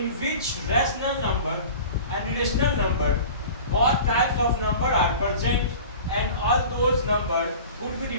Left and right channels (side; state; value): both; inverted; correlation -0.39